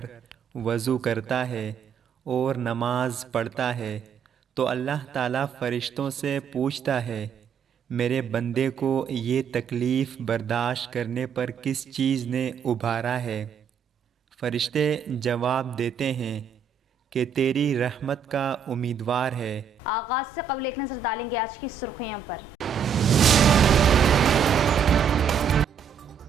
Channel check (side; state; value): left; quieter; 7.0 dB